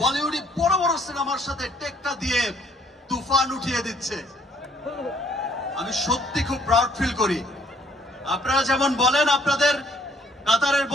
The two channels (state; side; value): normal; both; correlation 0.64